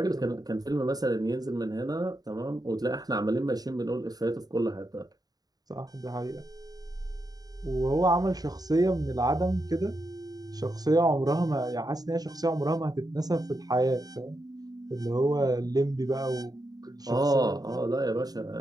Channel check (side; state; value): left; late; 0.18 ms